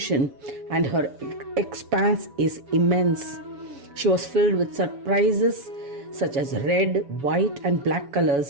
and her expanse is immense. She was filled with surprises such as red, white, and black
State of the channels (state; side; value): late; left; 7.0 ms